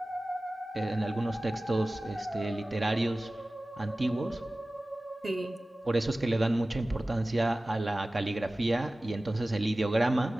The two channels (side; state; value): both; normal; correlation 0.97